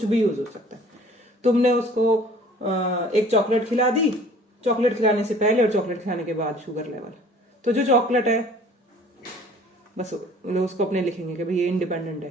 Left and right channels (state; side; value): normal; both; correlation 0.51